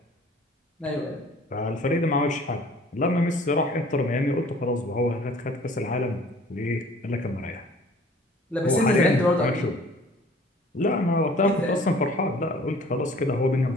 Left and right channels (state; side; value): normal; both; correlation 0.51